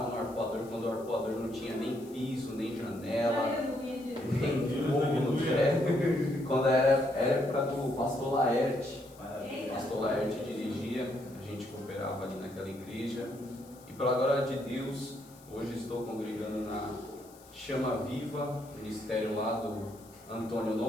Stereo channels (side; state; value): left; noise; hiss, 24 dB below the sound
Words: no Arpoador quando o Arpoador não tinha nem piso, nem janela, nem fogo no teto, quando era época do pastor Laerte. O pastor Laerte dirigia, a gente cooperava ali naquela igreja, e pela glória de Deus, hoje estou congregando na Chama Viva, ministério lá do Antônio